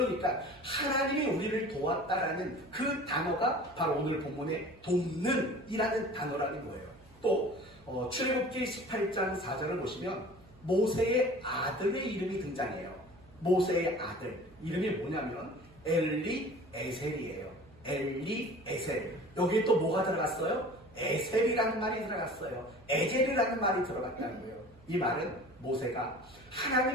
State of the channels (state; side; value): noise; right; hum, 25 dB below the sound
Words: 하나님이 우리를 도왔다라는 그 단어가 바로 오늘 본문의 돕는 이라는 단어라는 거예요. 또 출애굽기 18장 4절을 보시면 모세의 아들의 이름이 등장해요. 모세의 아들 이름이 뭐냐면 엘리 에셀이에요. 엘리 에셀. 여기에 또 뭐가 들어갔어요? 에셀이라는 말이 들어갔어요. 에제르라는 말이 들어갔다고요. 이 말은 모세가